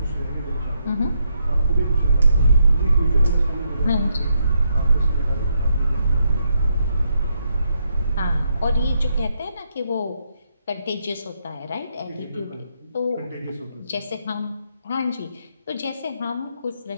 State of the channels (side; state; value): both; inverted; correlation -0.78